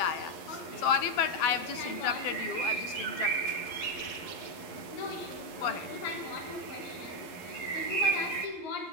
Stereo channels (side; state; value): right; late; 12 ms